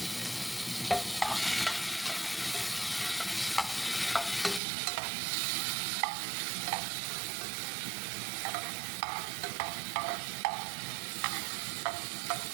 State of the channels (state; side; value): drops out; left; at 4.6 s